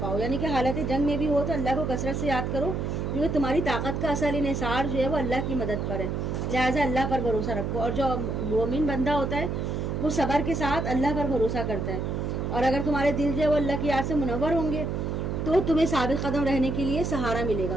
پاؤ. یعنی کہ حالت جنگ میں بھی ہو تو اللہ کو کثرت سے یاد کرو, کیونکہ تمہاری طاقت کا اصل انحصار جو ہے وہ اللہ کی مدد پر ہے, لہٰذا اللہ پر بھروسہ رکھو. اور جو مومن بندہ ہوتا ہے وہ صبر کے ساتھ اللہ پر بھروسہ کرتا ہے, اور اگر تمہارے دل جو ہے وہ اللہ کی یاد سے منور ہوں گے تو تمہیں ثابت قدم رہنے کے لیے سہارا ملے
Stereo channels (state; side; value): noise; right; hum, 2 dB below the sound